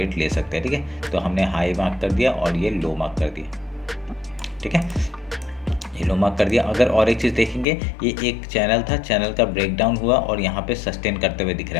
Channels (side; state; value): right; drops out; at 7.7 s